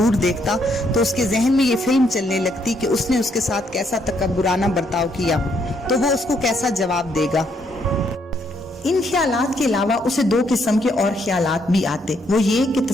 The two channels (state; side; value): normal; both; correlation 0.72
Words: دیکھتا تو اس کے ذہن میں یہ فلم چلنے لگتی کہ اس نے اس کے ساتھ کیسا تکبرانہ برتاؤ کیا تو وہ اس کو کیسا جواب دے گا۔ ان خیالات کے علاوہ اسے دو قسم کے اور خیالات بھی آتے، وہ یہ کہ